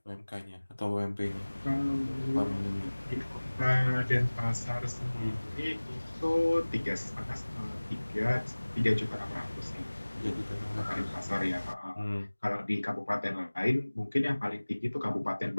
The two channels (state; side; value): inverted; both; correlation -1.00